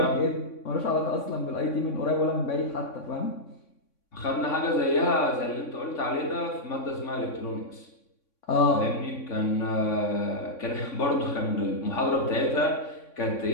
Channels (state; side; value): late; right; 3.6 ms